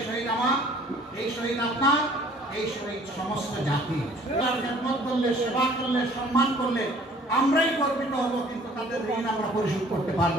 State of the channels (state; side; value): normal; both; correlation 0.54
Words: শহীদ আমার, এই শহীদ আপনার, এই শহীদ সমস্ত জাতি। তার খেদমত করলে, সেবা করলে, সম্মান করলে আমরাই গর্বিত হব, কিন্তু তাদের ঋণ আমরা পরিশোধ করতে